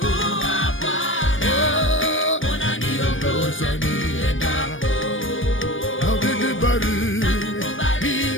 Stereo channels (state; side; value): late; right; 0.57 ms